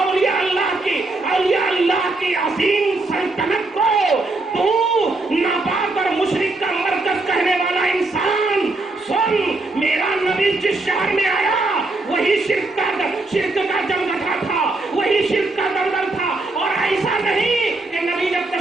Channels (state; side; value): quieter; left; 3.1 dB